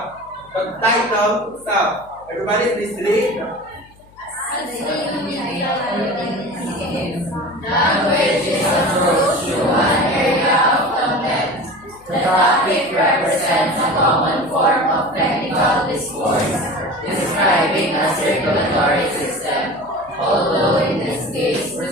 the title itself. Everybody please read. Language is approached through one area of content. The topic represents a common form of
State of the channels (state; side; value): noise; left; hum, 27 dB below the sound